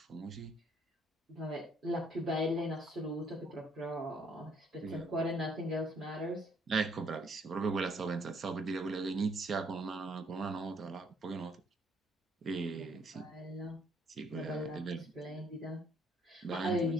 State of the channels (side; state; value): both; normal; correlation 0.66